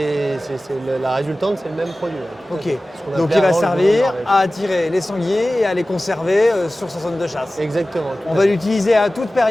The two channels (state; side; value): normal; both; correlation 0.96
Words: la résultante, c'est le même produit. Ok, Ce qu'on donc appelait il va avant le goudron de servir Norvège. à attirer les sangliers et à les conserver sur sa zone de chasse. Exactement. On va l'utiliser à toute